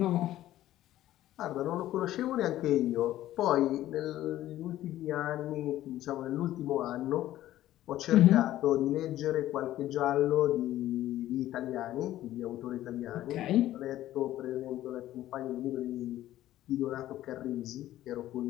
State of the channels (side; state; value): right; quieter; 14.0 dB